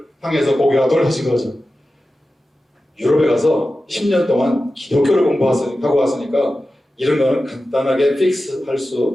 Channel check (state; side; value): normal; both; correlation 0.93